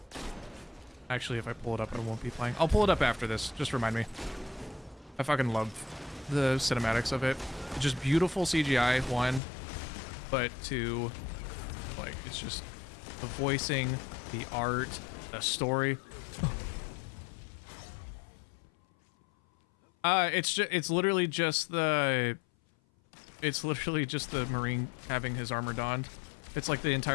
Actually, if I pull it up, I won't be playing. I'll pull it up after this. Just remind me. I fucking love the cinematics of it. Just beautiful CGI, one, but two, like, it's just the voicing, the art, the story. It's literally just the Marine having his armor donned. It's like the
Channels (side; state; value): right; drops out; at 9.4 s